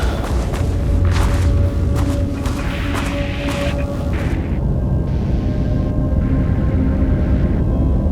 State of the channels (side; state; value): both; identical; correlation 1.00